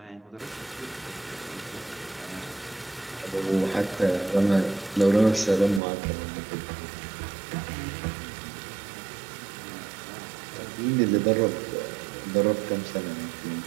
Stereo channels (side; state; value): left; drops out; at 5.8 s